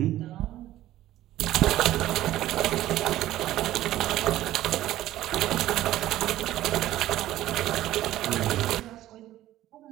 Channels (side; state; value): left; quieter; 14.3 dB